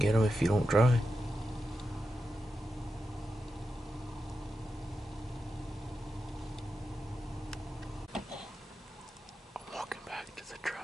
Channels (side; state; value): both; normal; correlation 0.89